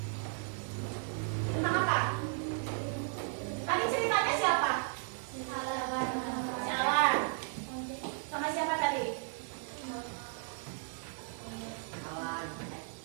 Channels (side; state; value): left; silent; 54 dB below the other